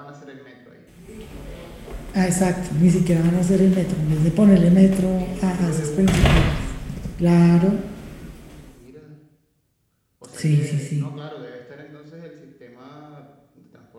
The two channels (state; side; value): identical; both; correlation 1.00